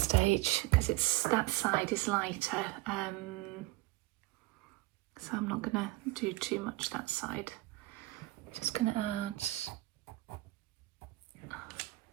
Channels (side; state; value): left; quieter; 19.4 dB